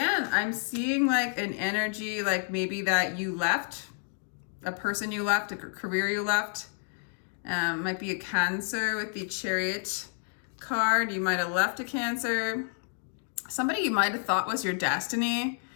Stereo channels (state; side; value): silent; right; 58 dB below the other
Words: I'm seeing like an energy, like maybe that you left, a person you left, a career you left. Might be a Cancer with the Chariot card. You might have left a Cancer. Somebody you might have thought was your destiny.